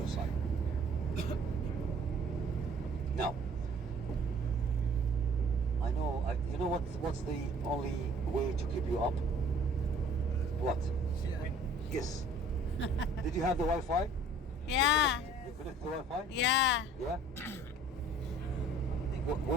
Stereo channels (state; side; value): normal; both; correlation 0.53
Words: side. Now, I know. You know what's the only way to keep you up? What? Yes. Did you have the Wi-Fi? Yeah. You connect the Wi-Fi? Yeah. Yeah.